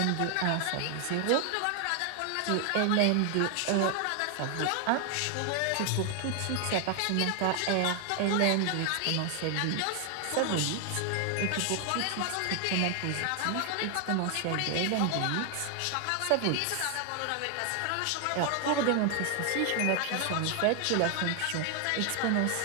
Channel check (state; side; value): different; both; correlation 0.00